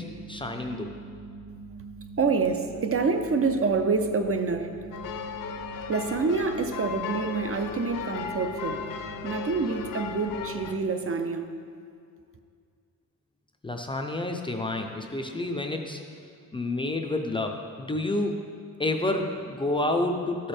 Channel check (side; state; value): both; normal; correlation 0.25